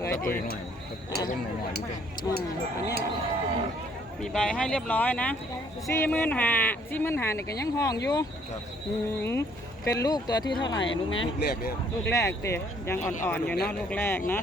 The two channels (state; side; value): normal; both; correlation 0.63